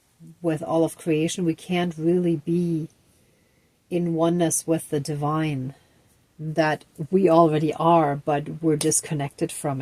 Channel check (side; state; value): both; identical; correlation 1.00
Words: with all of creation. We can't really be in oneness with the divine that we already are, but we're disconnected from